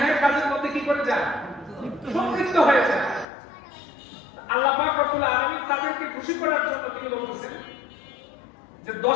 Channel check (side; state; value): right; drops out; at 3.2 s